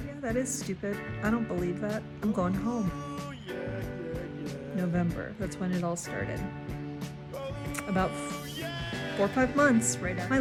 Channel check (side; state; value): both; identical; correlation 1.00